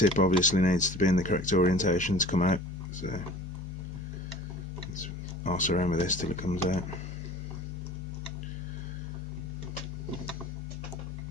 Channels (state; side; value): normal; both; correlation 0.43